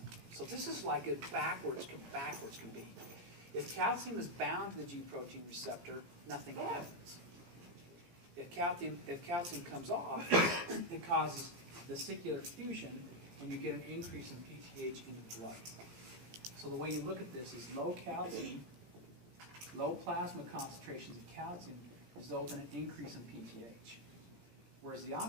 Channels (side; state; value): left; late; 18 ms